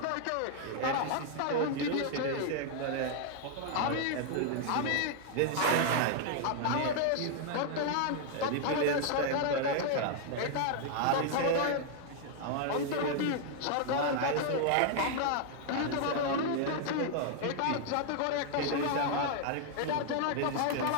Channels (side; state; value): both; different; correlation 0.00